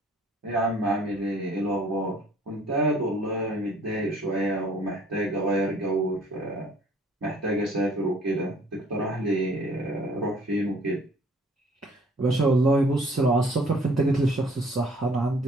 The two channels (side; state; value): both; normal; correlation 0.57